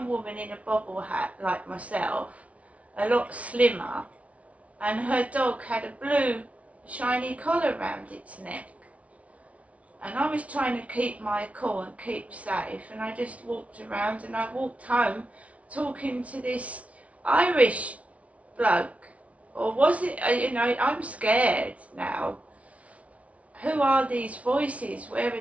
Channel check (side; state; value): left; late; 0.065 ms